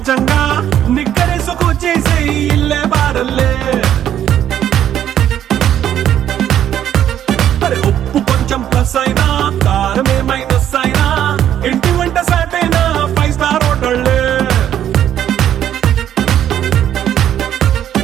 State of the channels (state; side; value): quieter; left; 10.6 dB